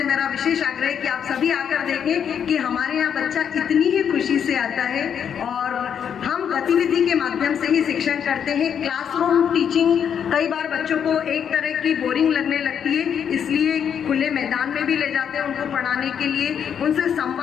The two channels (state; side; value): quieter; right; 8.1 dB